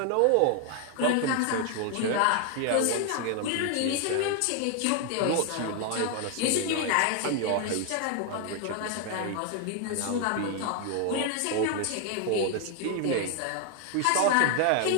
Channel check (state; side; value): different; both; correlation 0.01